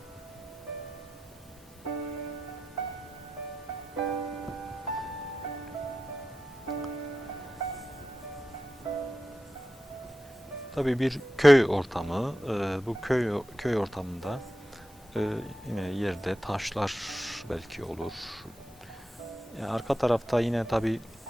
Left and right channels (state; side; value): normal; both; correlation 0.90